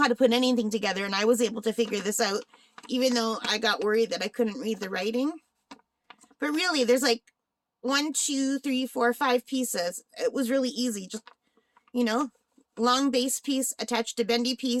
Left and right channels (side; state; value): both; identical; correlation 1.00